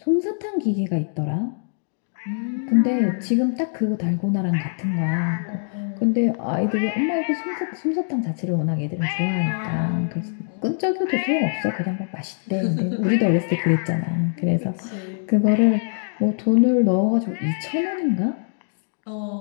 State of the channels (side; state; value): right; silent; digital silence